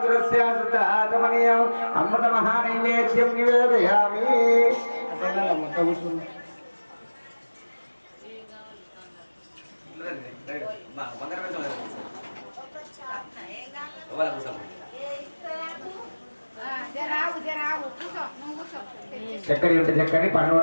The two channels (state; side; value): inverted; both; correlation -1.00